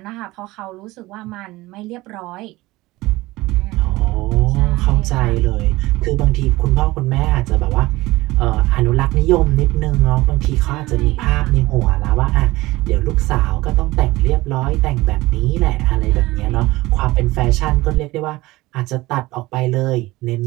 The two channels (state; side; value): quieter; left; 19.5 dB